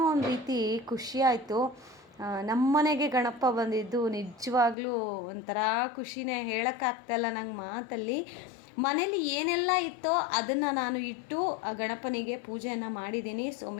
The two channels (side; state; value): right; drops out; at 4.8 s